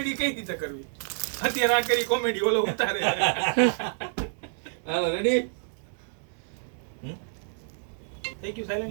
કઈ રીતે કરવી અત્યારે આ કરી કોમેડી ઓલો ઉતારે હાલો રેડી. થઈ ગયું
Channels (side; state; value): left; silent; 59 dB below the other